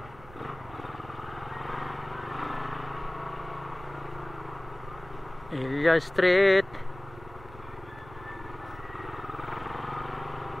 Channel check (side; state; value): right; noise; rumble, 18 dB below the sound